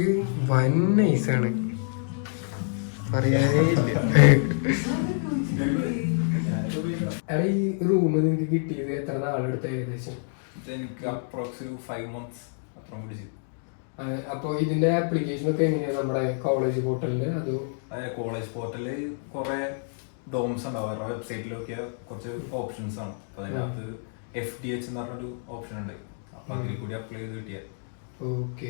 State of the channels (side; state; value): right; silent; digital silence